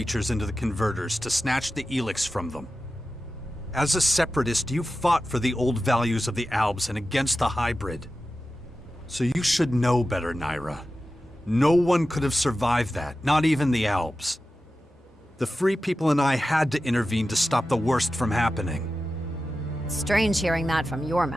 into the converters to snatch the Elex from them. As a separatist, you fought for the old values of the Albs and against the hybrid. So you should know better, Naira. No one could have survived that, not even the Albs. The Free People and I had to intervene to stop the worst from happening. strange hearing that from your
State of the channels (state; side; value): normal; both; correlation 0.93